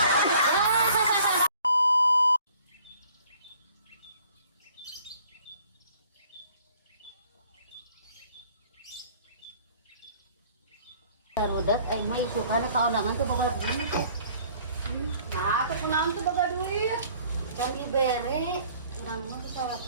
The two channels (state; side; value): inverted; both; correlation -0.56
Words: Rudat aing mah isukana kaundangan tuh boga duit. Nah, kepunaan tuh boga duit. Can dibere, urang mah bisa